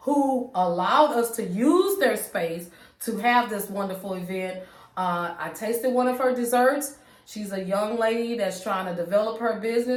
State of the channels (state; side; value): identical; both; correlation 1.00